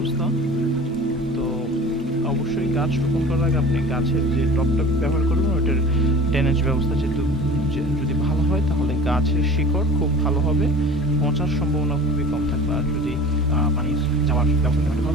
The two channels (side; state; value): both; normal; correlation 0.40